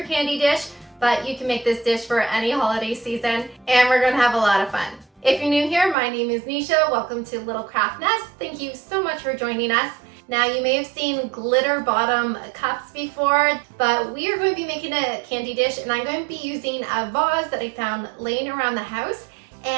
candy dish, but you can make this dish for any holiday season, and we're going to have a lot of fun. If you're new here, my name is Nisha. Welcome to Little Craft Nest. Thank you so much for joining us. Now, you may have seen glitter bottom cups before, but we are going to be making a candy dish, and I'm going to be using a vase that I found laying around the house,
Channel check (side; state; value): left; drops out; at 6.0 s